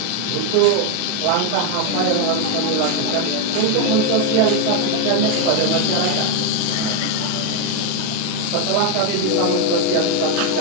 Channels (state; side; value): different; both; correlation 0.01